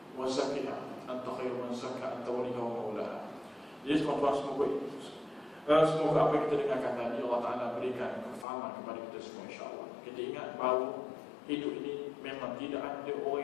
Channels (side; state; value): right; drops out; at 8.5 s